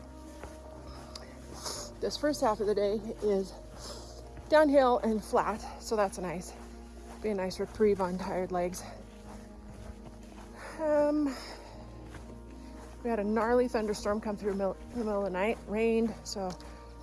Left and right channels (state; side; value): identical; both; correlation 1.00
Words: This first half of the day is downhill and flat, so that's nice. Be a nice reprieve on tired legs. We had a gnarly thunderstorm come through in the middle of the night. Rained, so